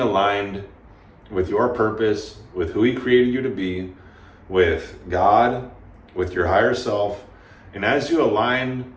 with your purpose, with who He created you to be, with God, with your higher self. And as you align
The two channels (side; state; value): both; identical; correlation 1.00